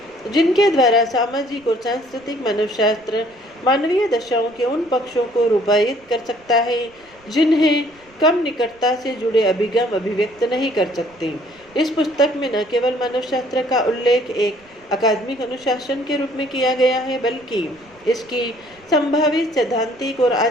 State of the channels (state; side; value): noise; right; rumble, 30 dB below the sound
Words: जिनके द्वारा सामाजिक और सांस्कृतिक मानवशास्त्र मानवीय दशाओं के उन पक्षों को रूपायित कर सकता है जिन्हें कम निकटता से जुड़े अभिगम अभिव्यक्त नहीं कर सकते। इस पुस्तक में न केवल मानवशास्त्र का उल्लेख एक अकादमिक अनुशासन के रूप में किया गया है, बल्कि इसकी संभावित सैद्धांतिक और